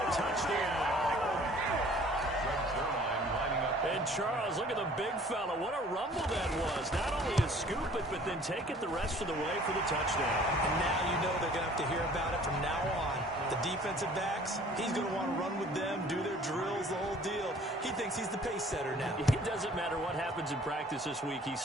touchdown. And Charles, look at the big fella. What a rumble that was. Not only to scoop it, but then take it the rest of the way for the touchdown. And now you know they're going to have to hear about it from now on. The defensive backs, he's going to want to run with them, do their drills, the whole deal. He thinks he's the pace setter now. It doesn't matter what happens in practice this week. He's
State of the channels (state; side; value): normal; both; correlation 0.52